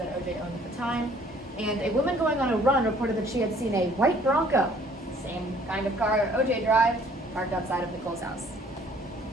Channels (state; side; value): normal; both; correlation 0.58